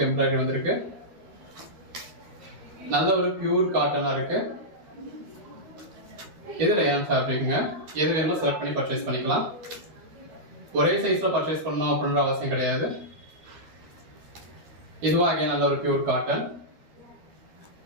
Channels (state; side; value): late; left; 13 ms